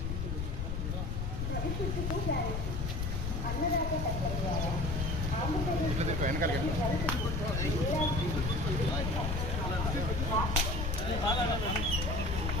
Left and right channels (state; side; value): noise; left; rumble, 1 dB below the sound